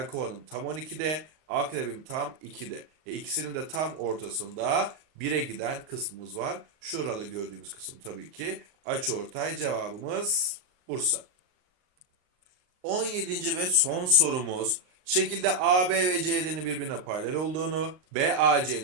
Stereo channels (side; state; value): left; late; 39 ms